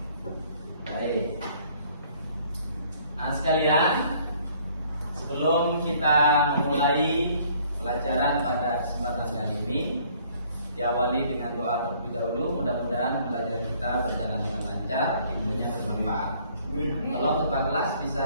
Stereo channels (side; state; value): both; inverted; correlation -0.60